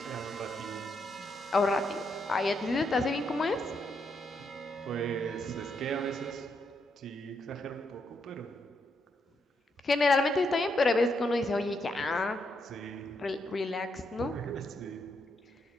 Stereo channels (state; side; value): normal; both; correlation 0.79